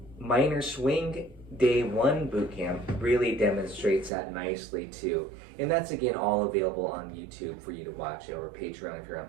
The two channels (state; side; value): drops out; left; at 4.1 s